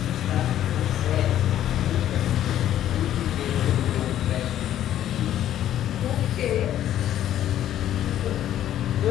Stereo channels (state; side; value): quieter; right; 11.7 dB